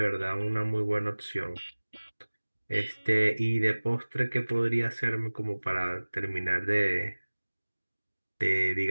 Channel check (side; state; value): both; inverted; correlation -1.00